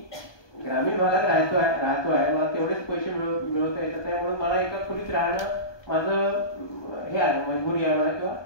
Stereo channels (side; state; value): right; late; 1.2 ms